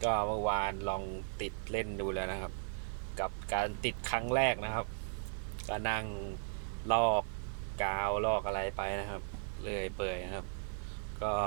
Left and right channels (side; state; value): left; silent; digital silence